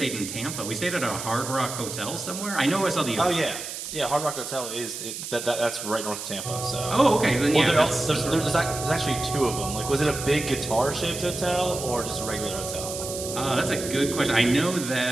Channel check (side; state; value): right; noise; hiss, 7 dB below the sound